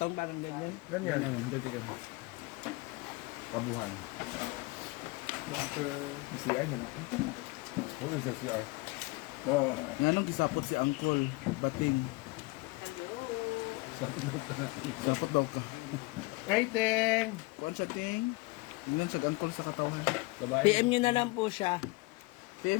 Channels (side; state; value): right; quieter; 24.0 dB